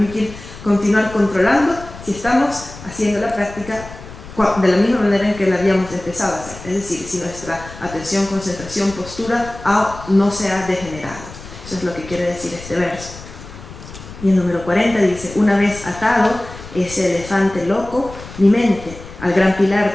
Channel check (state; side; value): noise; left; rumble, 15 dB below the sound